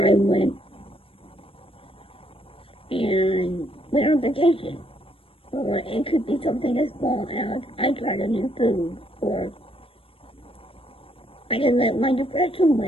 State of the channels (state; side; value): late; right; 0.27 ms